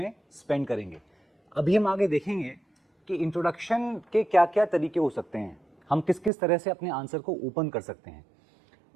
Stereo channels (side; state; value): left; drops out; at 6.3 s